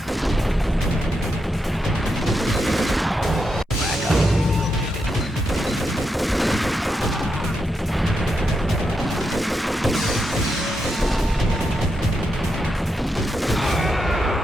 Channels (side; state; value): both; normal; correlation 0.84